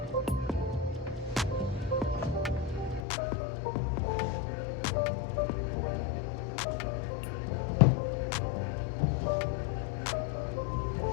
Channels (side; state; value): right; drops out; at 3.1 s